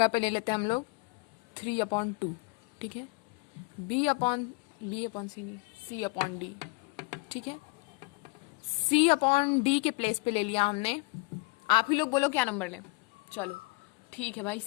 पे ले लेते हैं हम लोग 3/2। ठीक है, c/d। ठीक है, c/d के प्लेस पे ले लिया हमने। आप ही लोग बोलो क्या नंबर लें? चलो ठीक है भाई,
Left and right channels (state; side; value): quieter; right; 25.3 dB